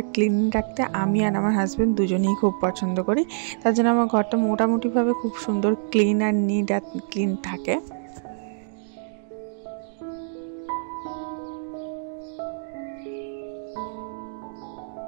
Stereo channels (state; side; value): silent; left; digital silence